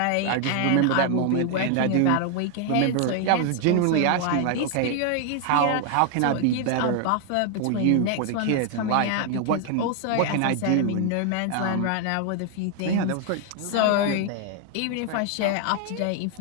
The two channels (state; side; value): different; both; correlation 0.00